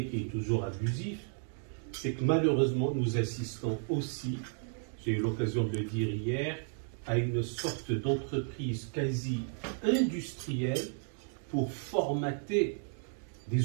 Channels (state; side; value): silent; left; 56 dB below the other